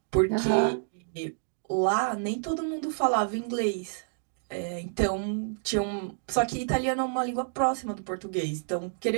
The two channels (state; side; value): silent; left; digital silence